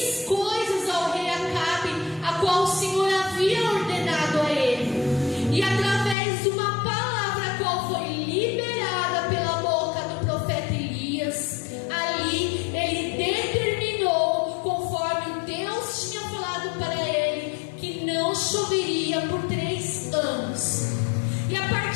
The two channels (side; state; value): right; drops out; at 6.2 s